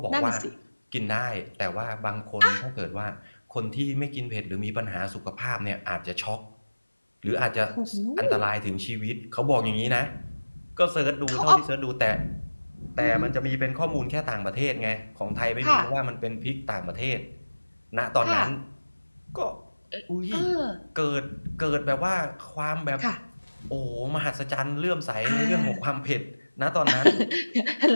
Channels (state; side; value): inverted; both; correlation -1.00